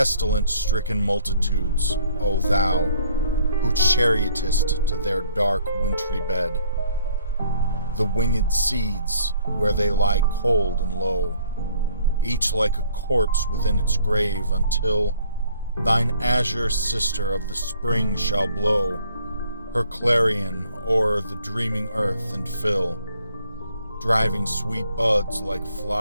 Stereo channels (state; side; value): inverted; both; correlation -0.60